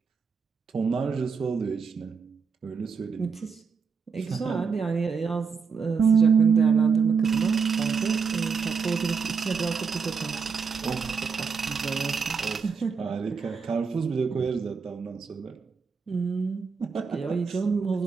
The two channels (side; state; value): left; quieter; 5.6 dB